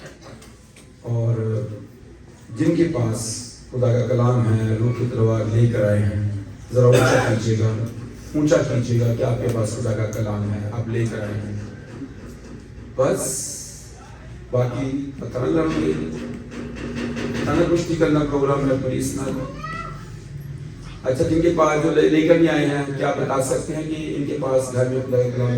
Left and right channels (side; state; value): both; identical; correlation 1.00